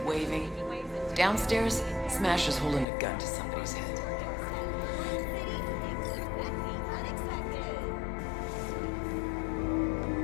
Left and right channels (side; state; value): right; drops out; at 2.9 s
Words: waving. Downstairs, Smasher's holding a gun to somebody's head.